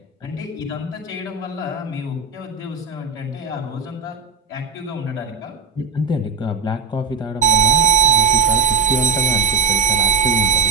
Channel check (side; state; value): left; quieter; 5.0 dB